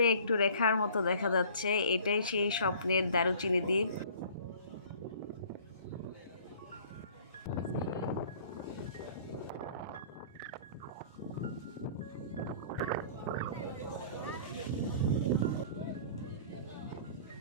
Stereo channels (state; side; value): inverted; both; correlation -0.49